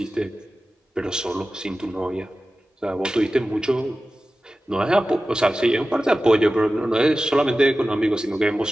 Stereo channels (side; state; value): both; normal; correlation 0.95